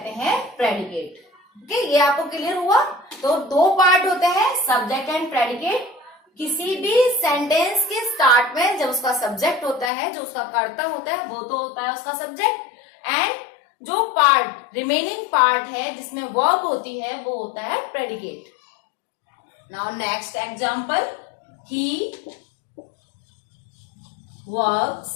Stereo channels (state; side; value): drops out; right; at 9.9 s